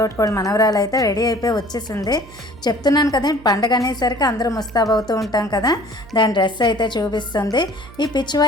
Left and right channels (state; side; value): noise; right; hum, 20 dB below the sound